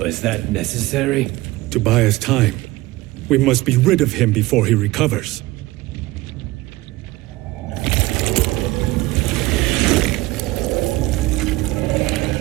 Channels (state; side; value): quieter; left; 19.3 dB